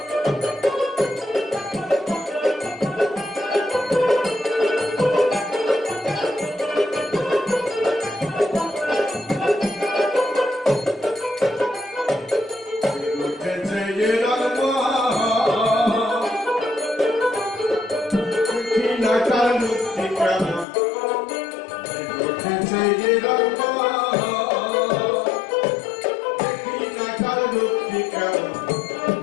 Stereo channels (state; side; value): drops out; right; at 20.7 s